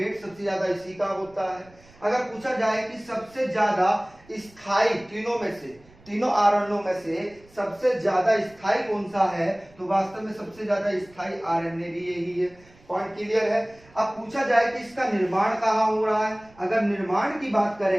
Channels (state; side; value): noise; right; rumble, 26 dB below the sound